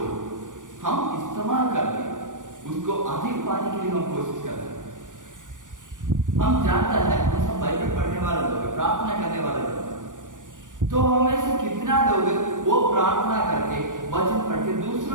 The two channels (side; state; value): left; late; 0.88 ms